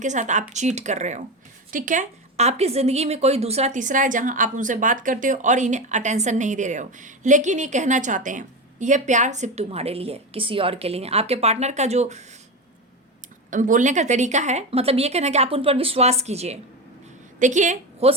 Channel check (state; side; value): normal; both; correlation 0.19